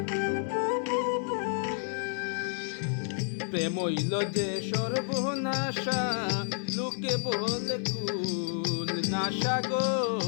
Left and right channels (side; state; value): right; silent; 56 dB below the other